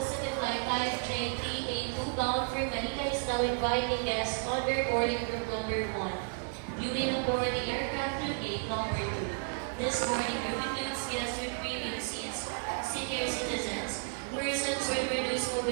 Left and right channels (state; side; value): silent; left; 56 dB below the other